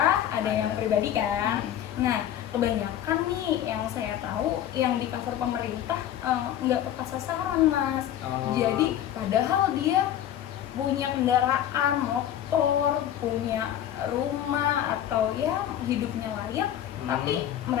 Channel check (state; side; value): quieter; right; 11.1 dB